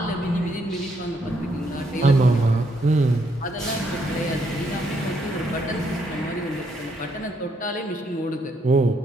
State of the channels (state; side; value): normal; both; correlation 0.74